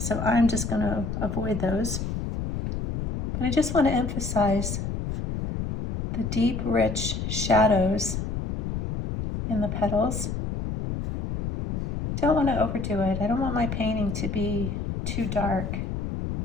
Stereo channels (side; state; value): left; noise; rumble, 3 dB below the sound